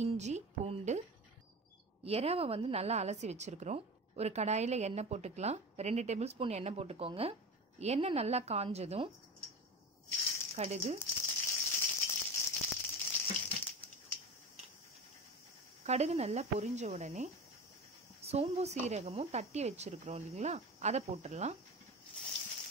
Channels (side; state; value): both; normal; correlation 0.28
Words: இஞ்சி, பூண்டு, எறாவை வந்து நல்லா அலசி வச்சுருக்குறோம். ஒரு கடாயில் எண்ணெய் போட்டுக்கலாம். 2 டேபிள் ஸ்பூன் எண்ணெய் போட்டுக்கோங்க. எண்ணெய் நல்லா காஞ்சதும் கடுகு நல்லா பொரிஞ்ச உடனே சோம்பு சீரகமும் தட்டி வச்சுருக்குறோம் இல்லைங்களா, அதை போட்டுடலாம்.